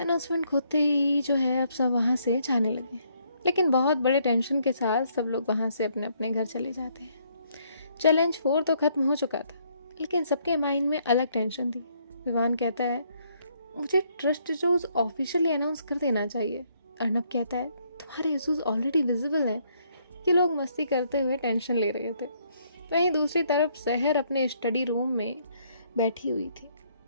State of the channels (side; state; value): both; inverted; correlation -0.69